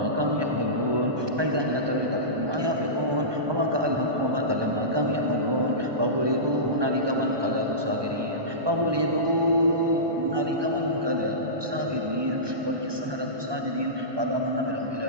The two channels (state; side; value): late; left; 1.2 ms